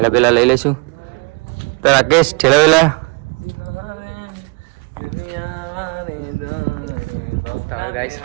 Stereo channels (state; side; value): quieter; left; 31.1 dB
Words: બેલા લઈ લઈશું. તો રાકેશ ઠેલા બેલા ગાઈસ